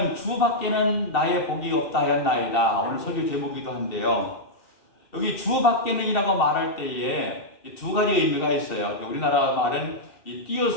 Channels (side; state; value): right; late; 2.7 ms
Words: 주 밖에는 나의 복이 없다 하였나이다. 오늘 설교 제목이기도 한데요. 여기 주 밖에는이라고 말할 때에 두 가지 의미가 있어요. 우리나라 말은 이